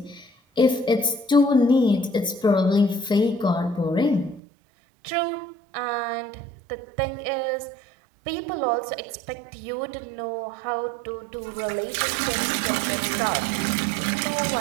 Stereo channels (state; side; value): drops out; left; at 4.4 s